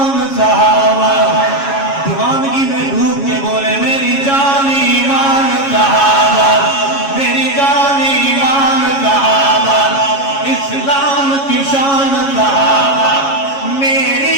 صحابہ دیوانگی میں ڈوب کے بولے میری جان ایمان صحابہ میری جان ایمان صحابہ اسلام کی شان صحابہ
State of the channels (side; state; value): right; late; 7.2 ms